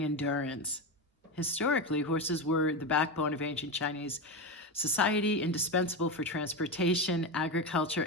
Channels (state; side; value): normal; both; correlation 0.16